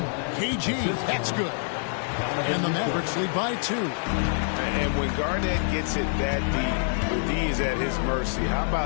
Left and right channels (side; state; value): right; silent; 61 dB below the other